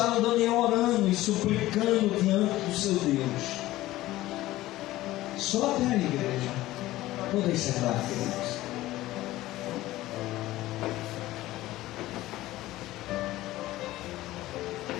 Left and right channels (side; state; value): right; quieter; 16.5 dB